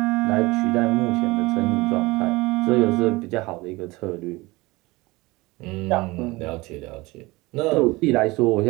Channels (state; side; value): quieter; left; 22.1 dB